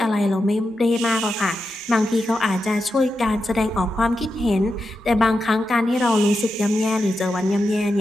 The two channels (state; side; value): normal; both; correlation 0.88